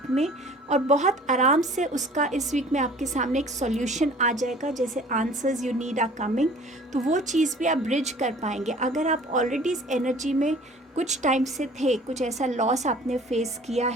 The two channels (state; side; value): normal; both; correlation 0.49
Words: में, और बहुत आराम से उसका इस वीक में आपके सामने एक सॉल्यूशन आ जाएगा। जैसे answers you need are coming, तो वो चीज़ भी आप ब्रिज कर पाएंगे। अगर आप ऑलरेडी इस एनर्जी में कुछ टाइम से थे, कुछ ऐसा लॉस आपने फेस किया